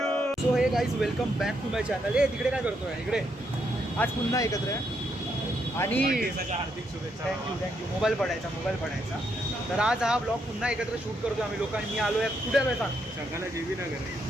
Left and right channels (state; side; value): normal; both; correlation 0.77